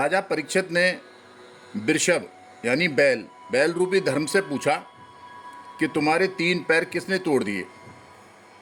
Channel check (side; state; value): both; identical; correlation 1.00